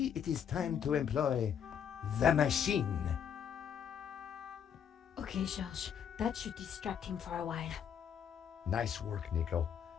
it is time to employ the machine. Okay, George, that should distract him for a while. Nice work, Nico.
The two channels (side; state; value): right; quieter; 8.3 dB